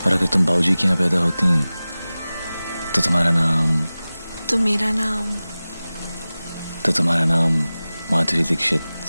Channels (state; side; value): inverted; both; correlation -0.97